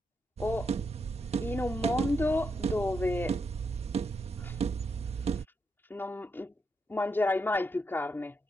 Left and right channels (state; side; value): normal; both; correlation 0.82